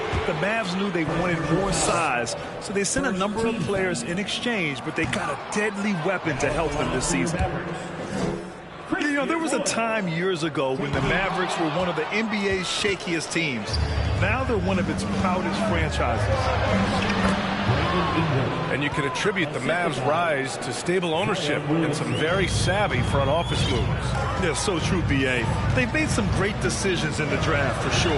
the Mavs knew they wanted more size, so they sent a number of players in exchange, but they got a deadly weapon to help them this season. You know, there was a time years ago when the Mavericks were one of the NBA's shakiest teams. Now they're one of its proudest franchises. And you can attribute the Mavs' rise to stable ownership and some very savvy front office moves. Yeah, so true, B.A. They've made some great decisions in the draft, for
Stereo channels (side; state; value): both; identical; correlation 1.00